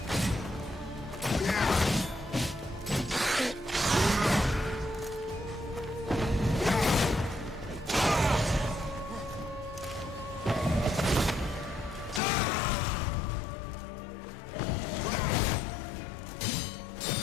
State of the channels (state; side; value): drops out; right; at 12.2 s